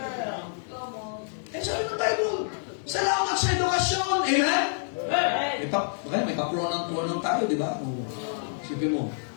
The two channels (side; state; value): right; silent; digital silence